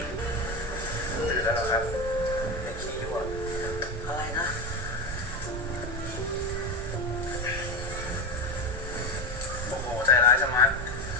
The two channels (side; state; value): both; normal; correlation 0.17